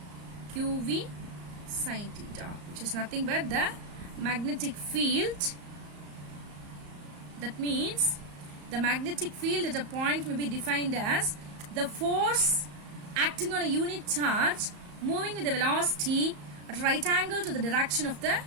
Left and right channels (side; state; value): left; late; 34 ms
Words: QV sin theta, which is nothing but the magnetic field. That means the magnetic field at a point may be defined as the force acting on a unit charge moving with the velocity at right angle to the direction of the